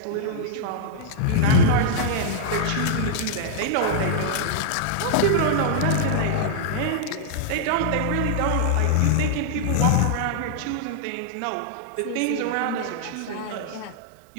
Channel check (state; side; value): different; both; correlation -0.02